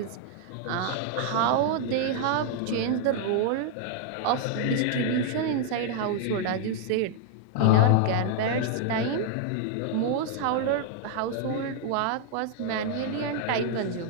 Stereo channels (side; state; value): both; different; correlation 0.00